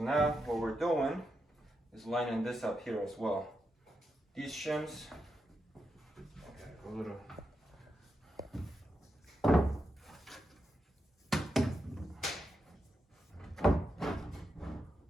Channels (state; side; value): normal; both; correlation 0.86